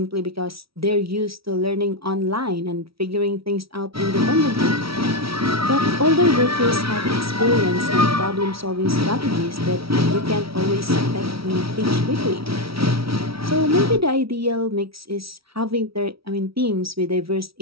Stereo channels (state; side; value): late; left; 0.75 ms